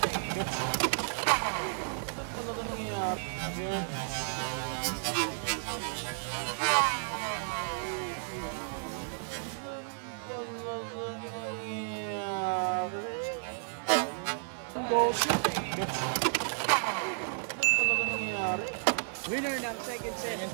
Go shoot! Winner ng second set. Second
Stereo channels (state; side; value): silent; left; digital silence